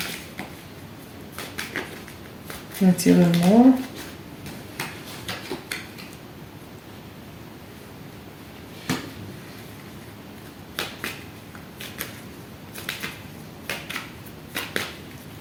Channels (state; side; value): identical; both; correlation 1.00